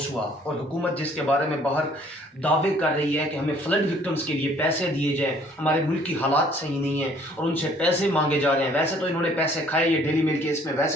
हुआ, और हुकूमत जिसके बारे में बाहर दावे कर रही है कि हमें फ्लड विक्टिम्स के लिए पैसे दिए जाएँ, हमारे मुल्क की हालात सही नहीं है और उनसे पैसे मांगे जा रहे हैं। वैसे तो इन्होंने पैसे खाए, ये डेली मिल केस में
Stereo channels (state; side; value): normal; both; correlation 0.59